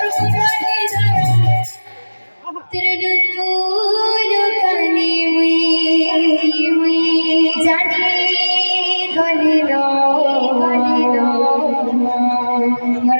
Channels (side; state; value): both; inverted; correlation -1.00